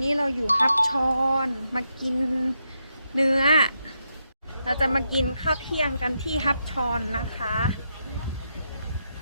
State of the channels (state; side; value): inverted; both; correlation -0.83